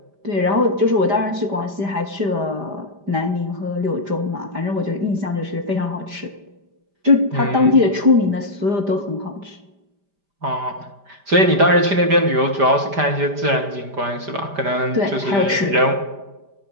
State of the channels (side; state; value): left; late; 5.0 ms